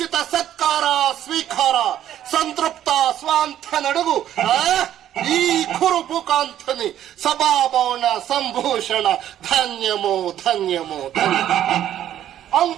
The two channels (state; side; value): quieter; left; 11.4 dB